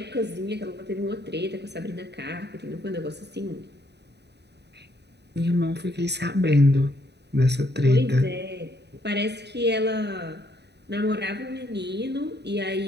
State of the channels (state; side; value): late; left; 0.49 ms